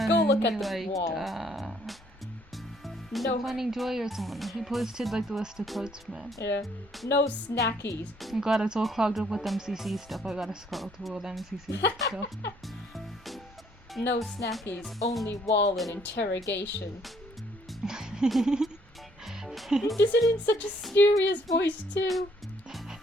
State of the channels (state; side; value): normal; both; correlation 0.65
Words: Go look who at the liked, wall. No. Finding Joy or someone. He posted like the list of quotes from it. Yeah. No snackies. Oh god, it's all clogged up with MCC stuff. I gotta scroll through all the MCC stuff. No snackies. Only wall and interrogation. He does it in such a serious voice too.